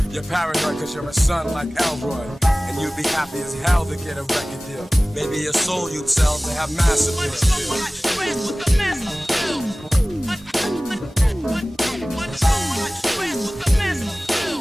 You're paranoid cause you're a son like Elroy, and you'd be happy as hell to get a record deal. Maybe your soul you'd sell to have massive appeal.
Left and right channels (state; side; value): normal; both; correlation 0.98